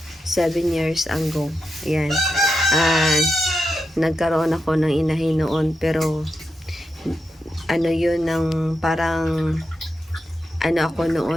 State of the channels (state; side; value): normal; both; correlation 0.87